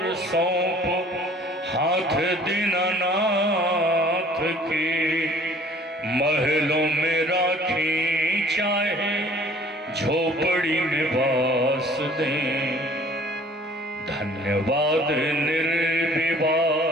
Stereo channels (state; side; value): normal; both; correlation 0.53